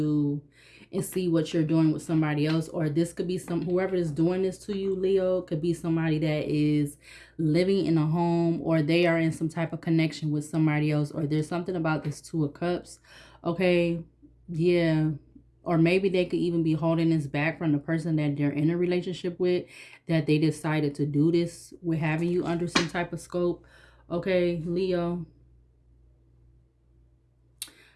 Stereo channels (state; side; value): identical; both; correlation 1.00